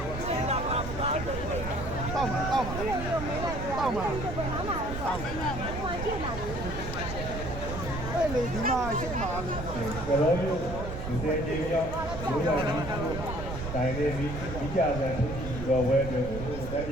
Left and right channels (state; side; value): noise; right; rumble, 7 dB below the sound